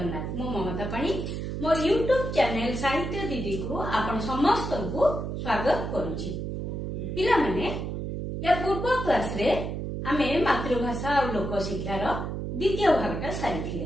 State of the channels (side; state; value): right; noise; hum, 4 dB below the sound